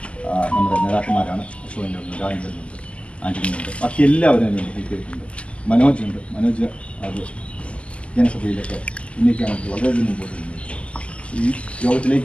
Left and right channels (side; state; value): right; late; 0.057 ms